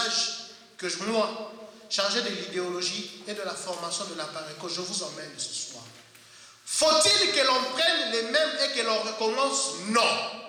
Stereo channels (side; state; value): both; identical; correlation 1.00